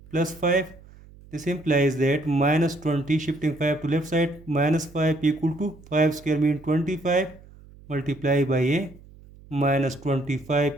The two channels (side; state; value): right; noise; hum, 22 dB below the sound